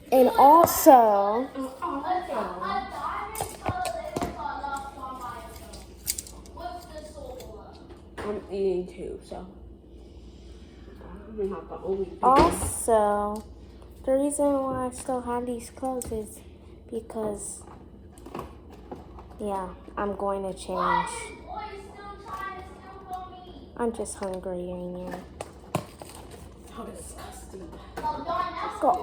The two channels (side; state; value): both; identical; correlation 1.00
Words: and also I'm eating too, so I'm not the only people. also the reason why I still have these clothes is because I'm going to change. I'm just hungry right now. How disgusting.